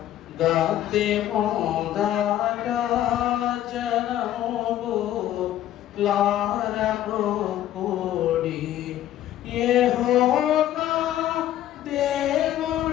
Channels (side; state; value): right; quieter; 12.4 dB